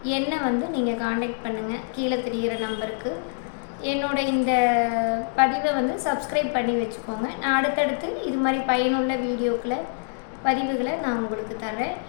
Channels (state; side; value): silent; right; digital silence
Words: என்னை நீங்கள் காண்டாக்ட் பண்ணுங்கள் கீழே தெரிகிற நம்பருக்கு. என்னோட இந்த பதிவை சப்ஸ்கிரைப் பண்ணி வச்சுக்கோங்க. நான் அடுத்தடுத்து இது மாதிரி பயனுள்ள பதிவுகளை நான் உங்களுக்கு தரேன்.